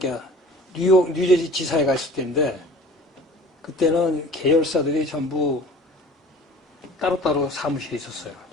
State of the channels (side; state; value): both; normal; correlation 0.45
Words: 뉴저지 지사에 갔을 때인데 그때는 계열사들이 전부 따로따로 사무실이 있었어요.